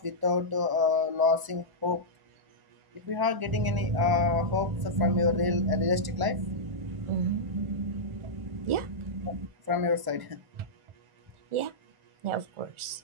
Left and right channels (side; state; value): left; late; 1.0 ms